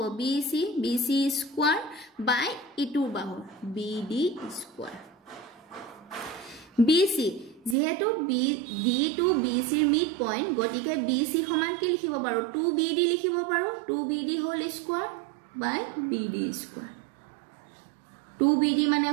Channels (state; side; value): drops out; left; at 7.8 s